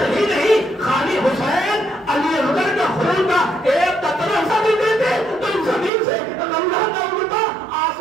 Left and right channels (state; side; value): drops out; left; at 5.9 s